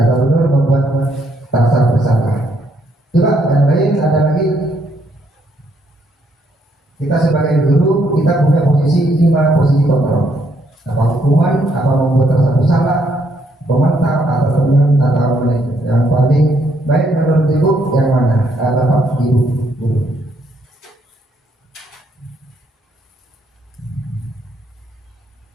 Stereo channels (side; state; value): both; normal; correlation 0.72